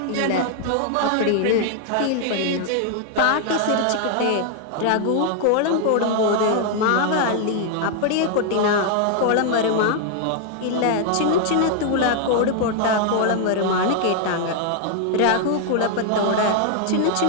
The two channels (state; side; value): different; both; correlation 0.00